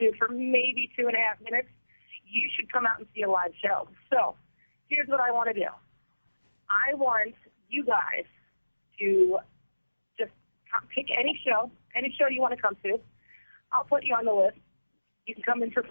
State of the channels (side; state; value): both; inverted; correlation -1.00